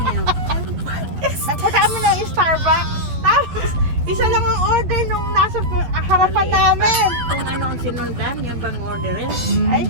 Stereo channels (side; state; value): left; late; 12 ms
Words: Nagpunta mo ng Starbucks. Tapos, isa lang ang order nung nasa harapan namin. Kung ano ang sinundan, yung bang orderin. Ay,